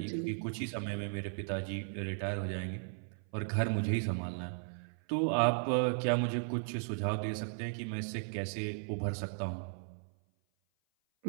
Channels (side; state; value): left; silent; 54 dB below the other